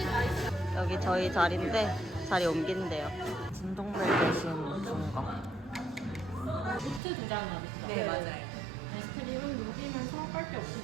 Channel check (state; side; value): drops out; left; at 7.0 s